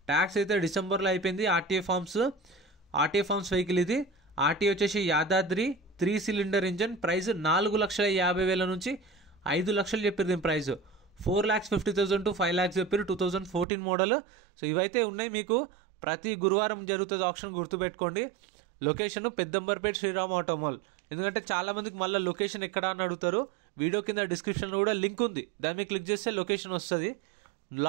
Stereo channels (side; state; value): left; drops out; at 13.7 s